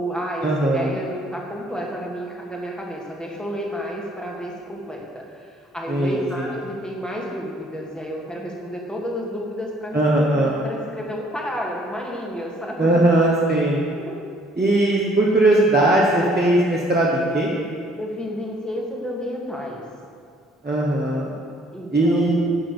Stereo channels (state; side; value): normal; both; correlation 0.62